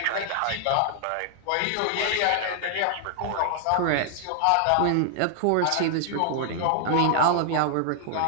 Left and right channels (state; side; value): different; both; correlation 0.00